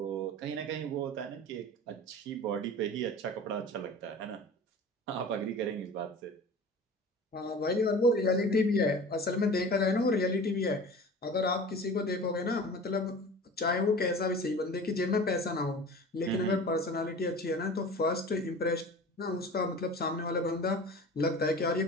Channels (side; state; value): both; normal; correlation 0.38